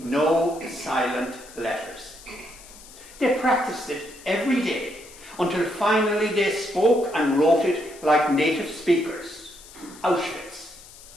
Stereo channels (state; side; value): noise; left; hiss, 20 dB below the sound